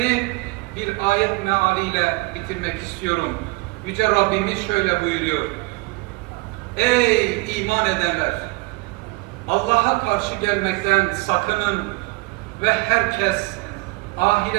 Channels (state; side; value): quieter; left; 24.5 dB